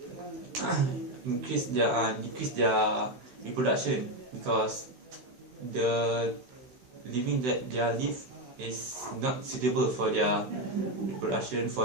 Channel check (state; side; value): late; left; 16 ms